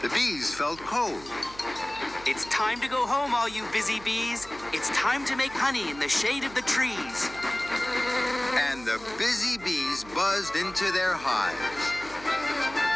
The bees felt cold. It's time to go home, all you busy bees. It's time to make honey in the shade of the trees. And the busy bees buzzed into their hives.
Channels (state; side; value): noise; right; hum, 19 dB below the sound